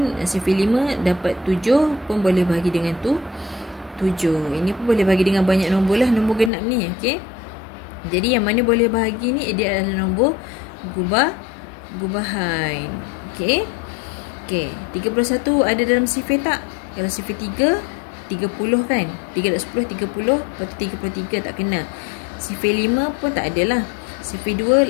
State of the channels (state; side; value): drops out; right; at 6.5 s